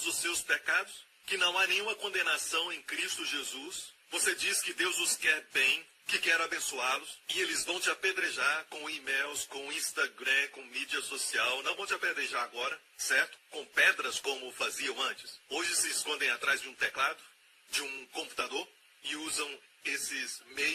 os seus pecados, que não há nenhuma condenação em Cristo Jesus. Você diz que Deus os quer bem, que quer abençoá-los, e eles vão te apedrejar com e-mails, com Instagram, com mídia social. Não vão te apedrejar agora, certo? Com pedras como faziam antes. Hoje se escondem atrás de um teclado, de um computador, e usam esses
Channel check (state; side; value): identical; both; correlation 1.00